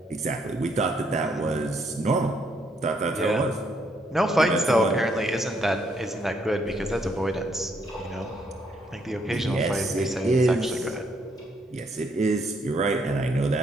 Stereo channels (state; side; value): normal; both; correlation 0.72